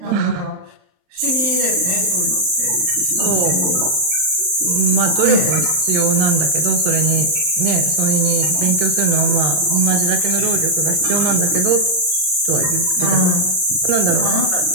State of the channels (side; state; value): left; late; 39 ms